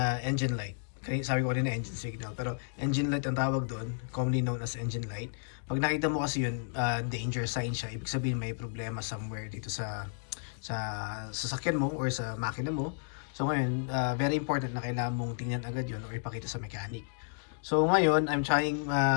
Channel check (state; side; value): silent; right; digital silence